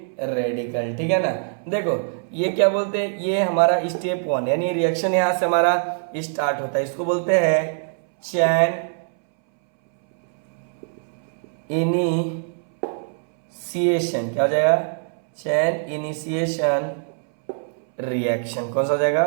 रेडिकल, ठीक है ना। देखो ये क्या बोलते हैं, ये हमारा स्टेप 1 यानी रिएक्शन यहां से हमारा स्टार्ट होता है, इसको बोलते हैं चैन इनिशिएशन। क्या हो जाएगा, चैन इनिशिएशन रिएक्शन। कौन सा हो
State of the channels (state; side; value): silent; left; 63 dB below the other